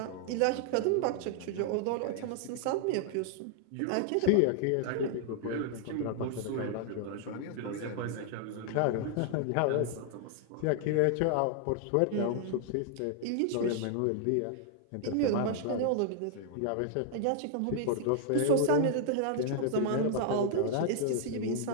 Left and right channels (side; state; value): both; different; correlation 0.00